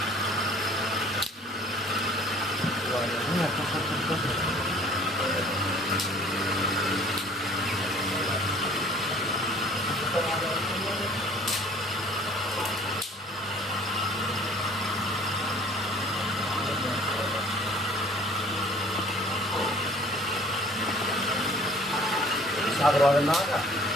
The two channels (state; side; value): normal; both; correlation 0.53